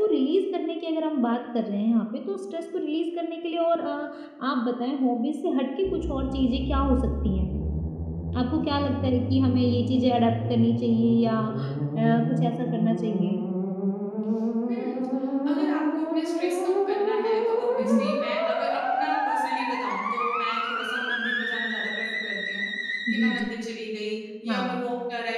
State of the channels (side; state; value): both; identical; correlation 1.00